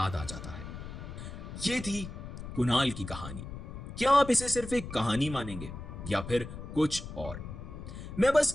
आ जाता है। ये थी कुणाल की कहानी। क्या आप इसे सिर्फ एक कहानी मानेंगे या फिर कुछ और? मैं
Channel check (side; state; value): left; noise; rumble, 10 dB below the sound